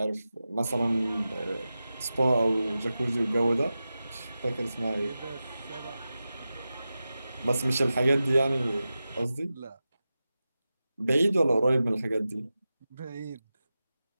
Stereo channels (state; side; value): inverted; both; correlation -0.93